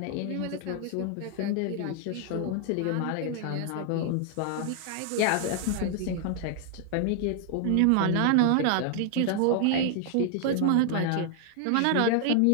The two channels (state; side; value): different; both; correlation 0.00